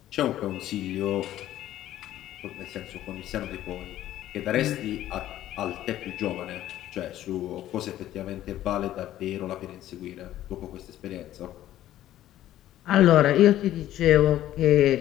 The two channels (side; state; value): right; quieter; 13.2 dB